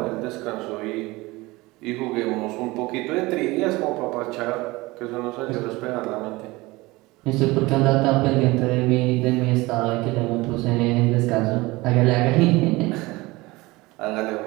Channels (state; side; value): quieter; left; 21.5 dB